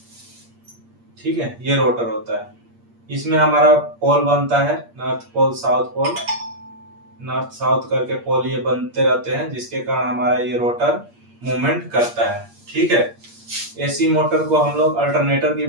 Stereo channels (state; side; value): late; left; 8.6 ms